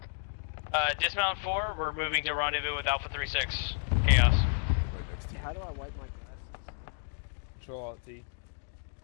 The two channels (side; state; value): right; silent; digital silence